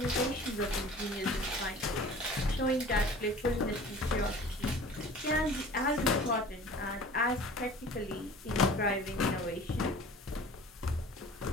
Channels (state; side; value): normal; both; correlation 0.44